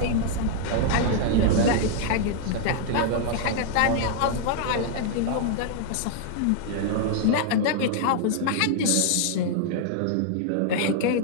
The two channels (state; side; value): different; both; correlation -0.01